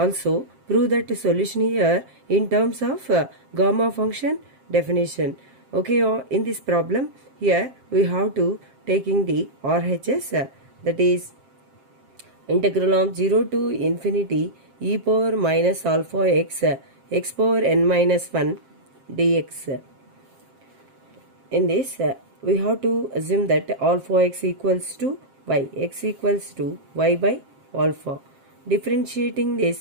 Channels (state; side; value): late; left; 7.5 ms